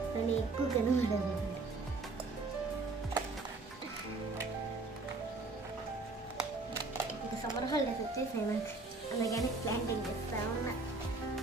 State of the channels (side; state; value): left; quieter; 3.5 dB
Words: కానీ ఎక్కువ కనబడదు. ఇంకా సమ్మర్ హాలిడేస్ వచ్చేసాయి నాకు, అందుకని ప్లాంటింగ్ చేస్తా ఉన్నా.